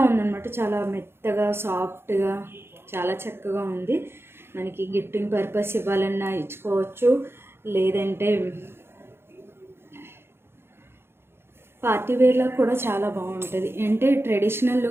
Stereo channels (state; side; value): late; left; 0.11 ms